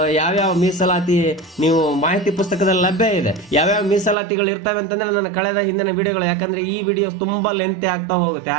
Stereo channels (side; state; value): left; drops out; at 4.2 s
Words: ಯಾವ್ಯಾವ ಮೀಸಲಾತಿ ನೀವು ಮಾಹಿತಿ ಪುಸ್ತಕದಲ್ಲಿ ಲಭ್ಯ ಇದೆ. ಯಾವ್ಯಾವ ಮೀಸಲಾತಿಗಳು ಇರ್ತವೆ ಅಂತಂದ್ರೆ ನನ್ನ ಕಳೆದ ಹಿಂದಿನ ವಿಡಿಯೋಗಳು, ಯಾಕಂದ್ರೆ ಈ ವಿಡಿಯೋ ತುಂಬಾ ಲೆಂತಿ ಆಗ್ತಾ ಹೋಗುತ್ತೆ.